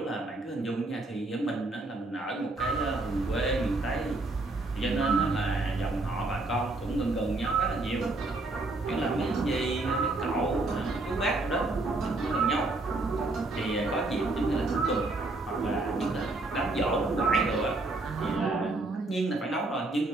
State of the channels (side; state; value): left; quieter; 3.0 dB